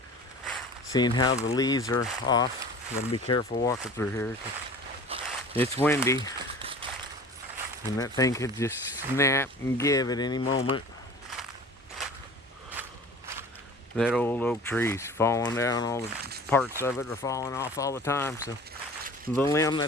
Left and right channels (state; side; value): normal; both; correlation 0.41